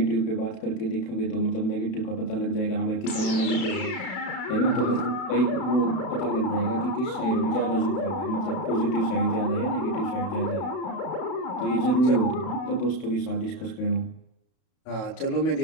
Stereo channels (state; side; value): late; right; 32 ms